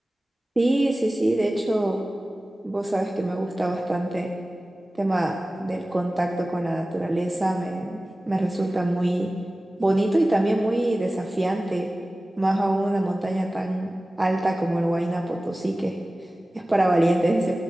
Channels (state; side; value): normal; both; correlation 0.97